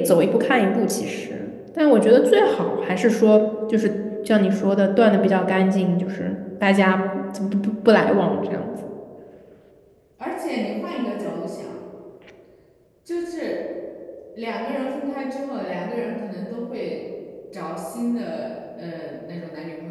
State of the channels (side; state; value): both; identical; correlation 1.00